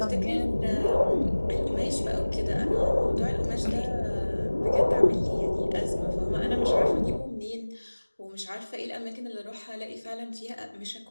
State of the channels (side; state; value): both; inverted; correlation -1.00